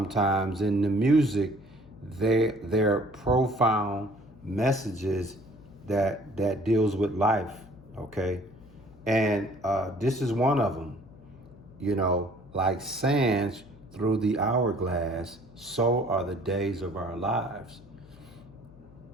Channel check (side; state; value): left; noise; hum, 23 dB below the sound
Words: in the music, they're profound messages that deals with life. Okay, and this is one of them. You know, like sands through the hourglass, so are the days of our lives.